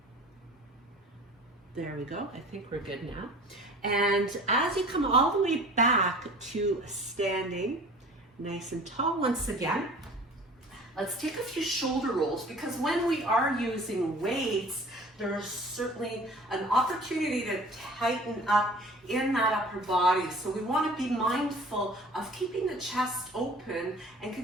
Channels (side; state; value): both; normal; correlation 0.45